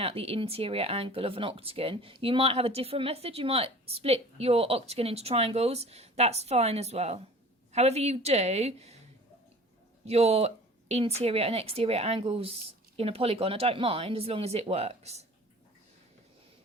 the interior angle of an octagon. You might have a different method. You might split your octagon into triangles. That's fine as well. However you do your interior and exterior angles in a polygon, I don't mind as long as it works.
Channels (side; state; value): both; normal; correlation 0.44